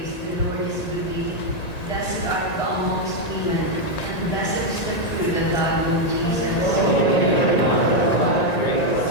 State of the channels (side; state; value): right; late; 1.9 ms